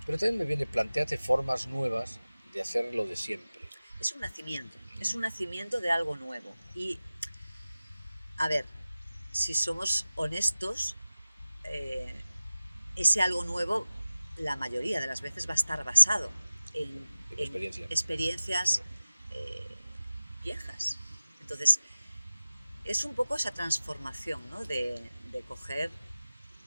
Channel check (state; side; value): inverted; both; correlation -0.96